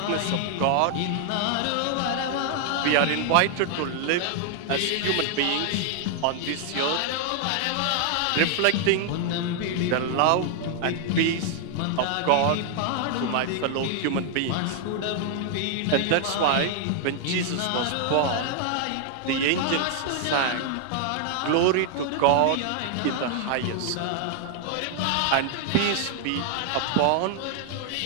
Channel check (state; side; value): different; both; correlation 0.00